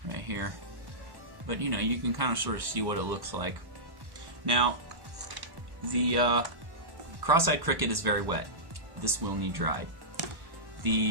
right here, but you know, you can kind of sort of see what it looks like. Now, the cross-eyed cricket is very wet. This will need dried.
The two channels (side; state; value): left; late; 1.1 ms